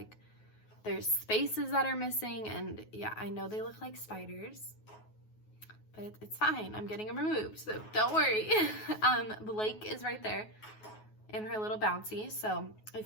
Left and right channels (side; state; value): right; late; 9.4 ms